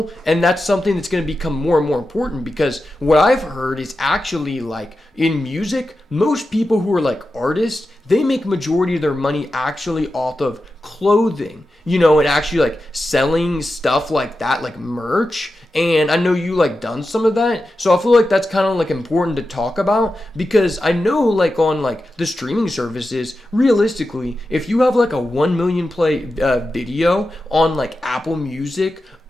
and that's something that's going to become more and more important because what I've heard is actually like in music, most people who are like artists, they make majority of their money actually off of clothing, and actually like selling stuff like that, like merch. And I know you like done some of that, so I feel like that's kind of like important to talk about because I know like on like the streaming services, realistically, if you have like a 1 million play video on like Apple Music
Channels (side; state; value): both; normal; correlation 0.91